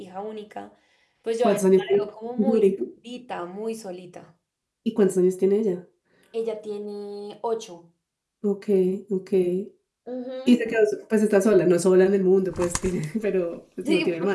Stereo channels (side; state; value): both; identical; correlation 1.00